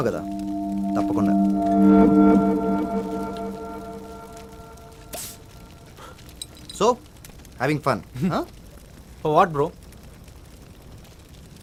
కదా, తప్పకుండా. So having fun? What bro?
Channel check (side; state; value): both; identical; correlation 1.00